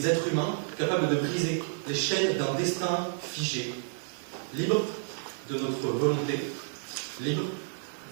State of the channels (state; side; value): silent; left; 55 dB below the other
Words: êtres humains capables de briser les chaînes d'un destin figé, libres de notre volonté, libres